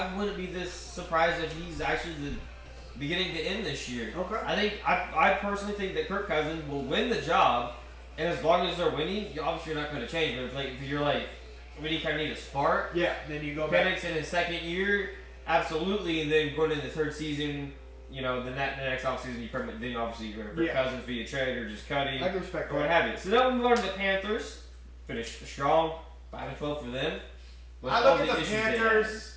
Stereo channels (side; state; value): both; identical; correlation 1.00